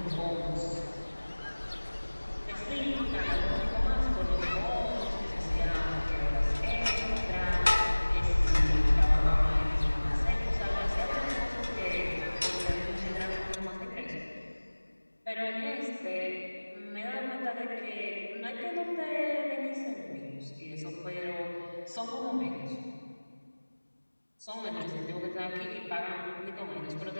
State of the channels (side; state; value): both; inverted; correlation -1.00